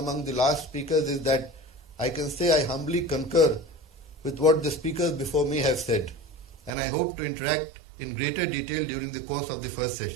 the last speakers is that I can say I humbly concur with what the speakers before me have said, and I hope to interact in greater detail during the course of the first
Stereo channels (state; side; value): drops out; left; at 6.7 s